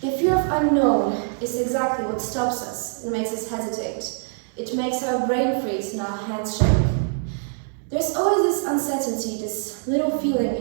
The fear of unknown is exactly what stops us and makes us hesitate. It makes our brain freeze and our hands shake. There's always this uncertainty, this little feeling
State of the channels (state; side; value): silent; left; 63 dB below the other